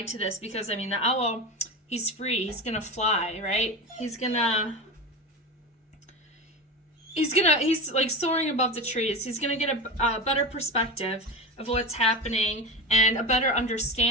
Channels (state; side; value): normal; both; correlation 0.24